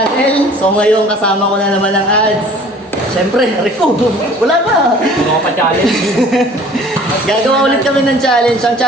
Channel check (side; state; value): both; normal; correlation 0.50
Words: So ngayon kasama ko na naman ang ads. Siyempre, Rico, wala pa. Ano ka pa challenge? Gagawa ulit kami ng challenge. Ang